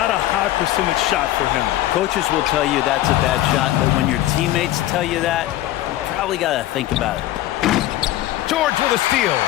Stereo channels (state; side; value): quieter; right; 14.7 dB